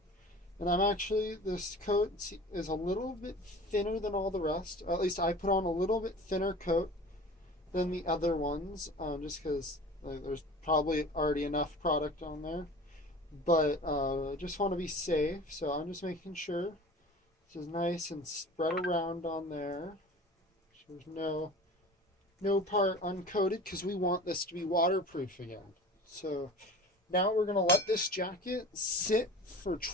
And this coat is a little bit thinner than all the rest. At least I put on a little bit thinner coat than the other ones, just because there's probably already enough product on there. but just want to be safe, so I'm just making sure this is nice and spread around on there. So there's no part uncoated because we want this to be waterproof again. So now we're going to let this jacket sit for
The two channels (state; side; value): normal; both; correlation 0.40